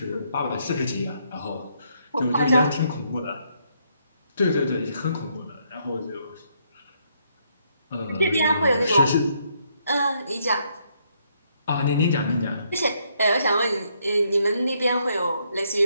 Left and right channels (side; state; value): both; inverted; correlation -0.73